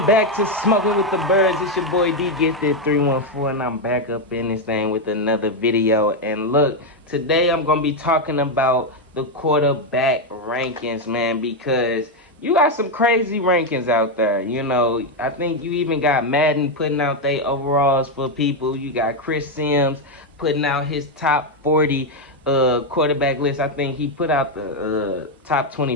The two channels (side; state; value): both; normal; correlation 0.04